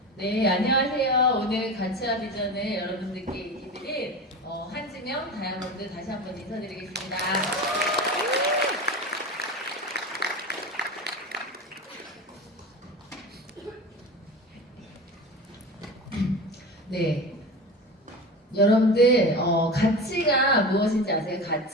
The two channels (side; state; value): both; normal; correlation 0.29